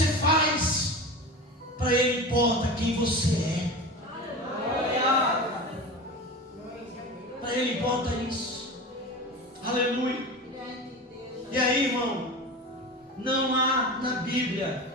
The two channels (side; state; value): both; normal; correlation 0.30